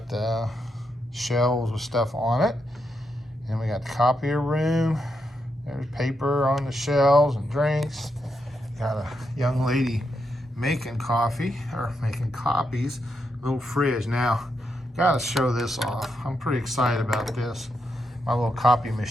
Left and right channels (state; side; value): normal; both; correlation 0.82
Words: the shelves with stuff on it, and we got the copier room. There's paper on the shelves and drinks. Got a young lady making coffee, or making copies. Little fridge. Now, gotta show this off. I'm pretty excited about this. My little copy